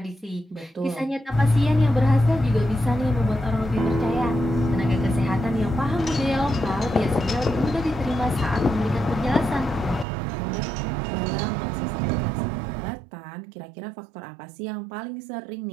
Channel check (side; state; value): left; drops out; at 10.1 s